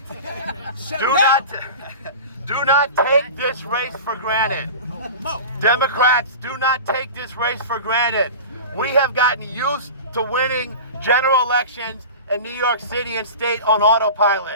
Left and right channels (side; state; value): both; inverted; correlation -0.33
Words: Do not take this race for granted. Democrats, do not take this race for granted. We have gotten used to winning general elections in New York City and state on